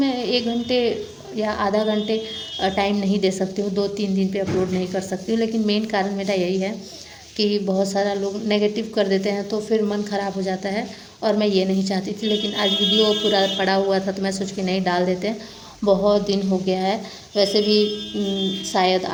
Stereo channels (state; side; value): identical; both; correlation 1.00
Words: 1 घंटे या आधा घंटे टाइम नहीं दे सकती हूँ, 2-3 दिन पे अपलोड नहीं कर सकती हूँ। लेकिन मेन कारण मेरा यही है कि बहुत सारा लोग नेगेटिव कर देते हैं तो फिर मन ख़राब हो जाता है, और मैं ये नहीं चाहती थी। लेकिन आज वीडियो पूरा पड़ा हुआ था तो मैं सोच के नहीं डाल देते हैं। बहुत दिन हो गया है। वैसे भी शायद